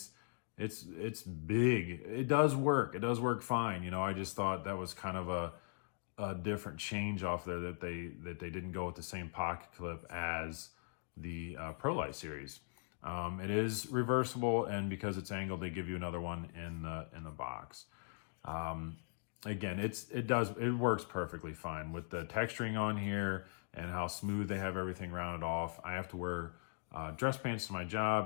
big. It does work. It does work fine. You know, I just thought that was kind of a different change off there, that they didn't go with the same pocket clip as the Pro Lite series. It is reversible, and because it's angled, they give you another one in the box. Again, it works perfectly fine with the texturing on here and how smooth they have everything rounded off. I have to wear dress pants to my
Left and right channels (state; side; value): silent; right; digital silence